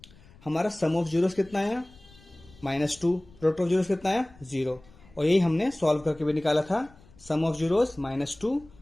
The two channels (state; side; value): noise; left; rumble, 25 dB below the sound